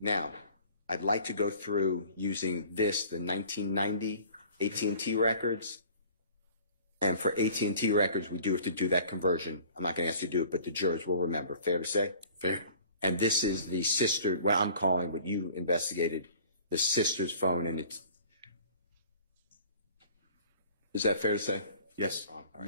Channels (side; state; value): both; inverted; correlation -0.49